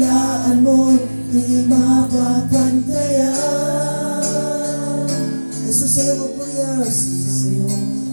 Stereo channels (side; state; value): both; inverted; correlation -1.00